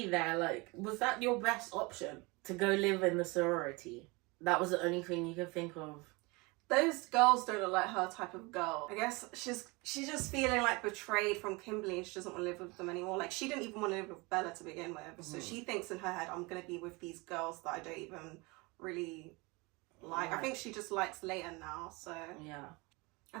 there. Like, was that your best option? To go live in the sorority? That was the only thing you could think of. Those girls don't look like her type of girl. I guess she's just feeling like betrayed from Kimberly and she doesn't want to live with them anymore. Like, she didn't even want to live with Bella to begin with. Mm-hmm. So she thinks in her head, I'm going to be with these girls that I don't even really like. I think she just likes Leighton now, so... Yeah.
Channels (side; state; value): left; quieter; 26.0 dB